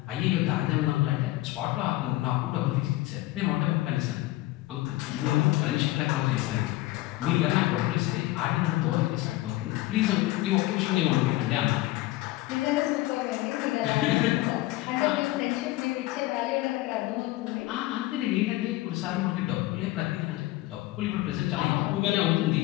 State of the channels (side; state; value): right; quieter; 17.7 dB